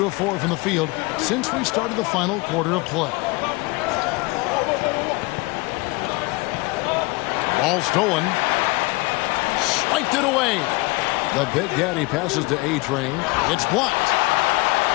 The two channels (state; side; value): quieter; right; 24.2 dB